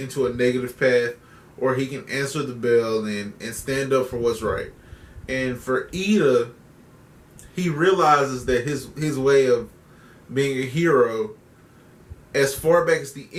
a negative path, or he can answer the bell and stand up for what's right. And for Iida, he realizes that his way of being a hero, as far back as the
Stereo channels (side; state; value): both; identical; correlation 1.00